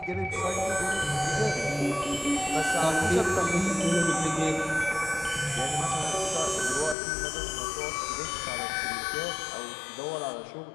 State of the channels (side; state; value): right; drops out; at 7.0 s